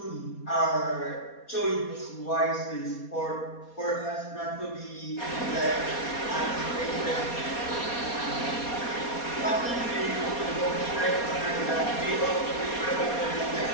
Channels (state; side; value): late; right; 4.2 ms